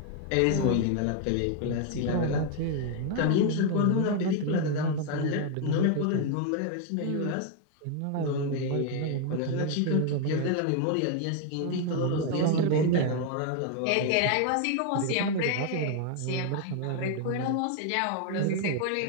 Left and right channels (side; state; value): both; different; correlation 0.00